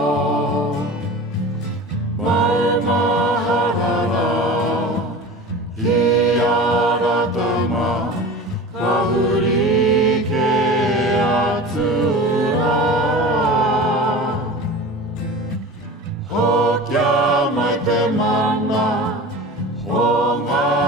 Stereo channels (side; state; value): both; normal; correlation 0.35